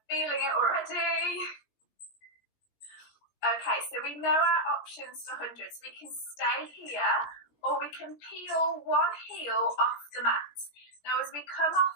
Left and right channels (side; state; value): right; late; 17 ms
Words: feeling it already. Okay, so we know our options for hundreds. We can stay here or we can peel one heel off the mat. Now as we come off